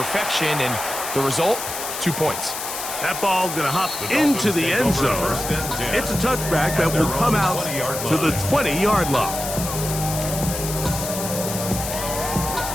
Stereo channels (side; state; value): left; noise; hiss, 6 dB below the sound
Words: and the result, 2 points. That ball going to hop into the end zone. It's a touchback that will come out to the 20-yard line.